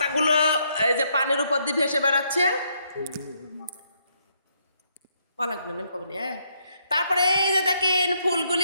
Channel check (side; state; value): both; inverted; correlation -0.73